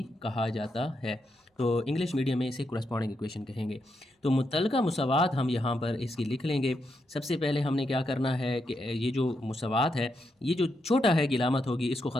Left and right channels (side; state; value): both; normal; correlation 0.82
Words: कहा जाता है, तो इंग्लिश मीडियम में इसे कोरेस्पॉन्डिंग इक्वेशन कहेंगे। तो मुतल्लिका मुसावात हम यहाँ पर इसकी लिख लेंगे। सबसे पहले हमने क्या करना है कि ये जो मुसावात है, ये जो छोटा है की अलामत होगी, इसको